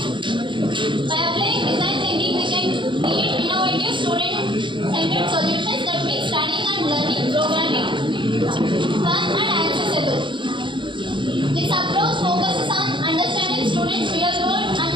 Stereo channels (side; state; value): left; late; 0.23 ms